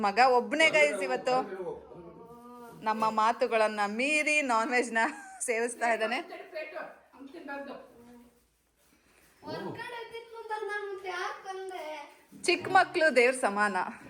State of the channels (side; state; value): both; identical; correlation 1.00